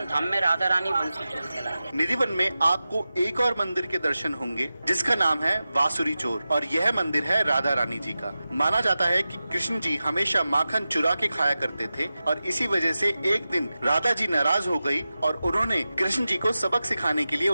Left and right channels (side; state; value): both; inverted; correlation -0.94